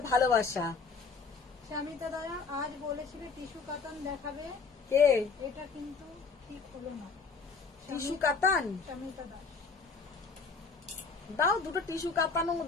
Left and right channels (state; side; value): quieter; right; 4.8 dB